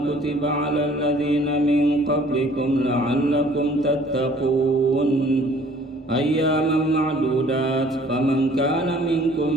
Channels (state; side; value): normal; both; correlation 0.55